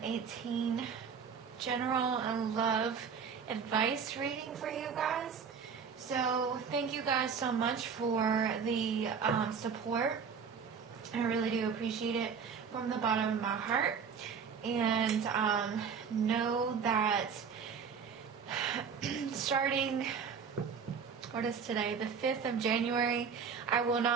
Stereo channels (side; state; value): left; quieter; 6.3 dB